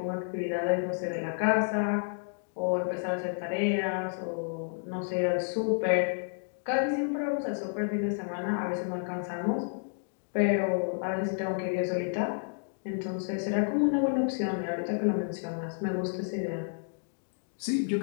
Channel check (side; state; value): right; silent; digital silence